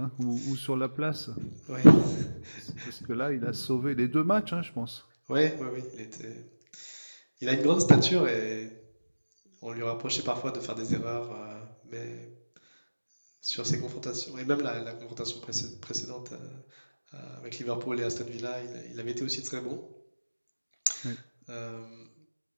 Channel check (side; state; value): both; inverted; correlation -1.00